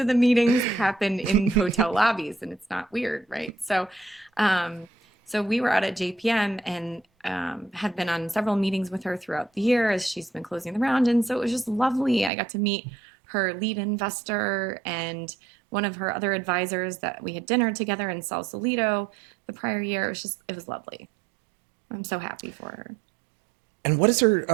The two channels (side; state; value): left; drops out; at 12.3 s